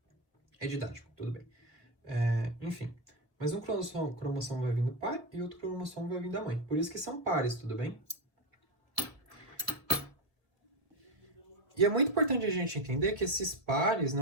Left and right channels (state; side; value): late; left; 1.7 ms